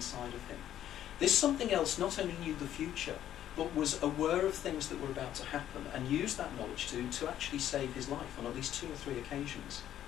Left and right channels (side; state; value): right; quieter; 11.4 dB